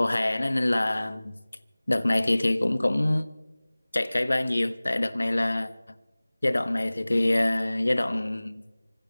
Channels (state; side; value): inverted; both; correlation -1.00